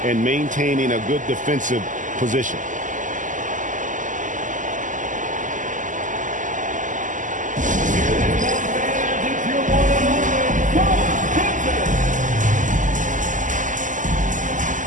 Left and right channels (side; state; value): left; late; 0.37 ms